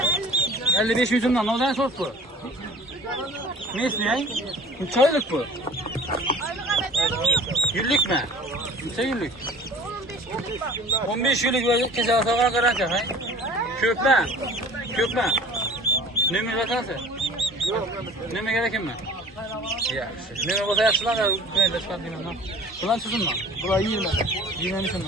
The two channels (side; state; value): both; normal; correlation 0.46